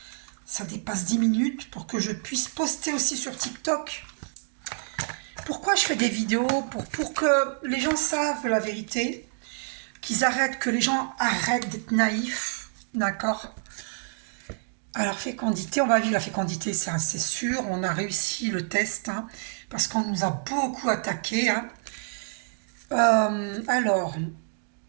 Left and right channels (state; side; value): silent; left; digital silence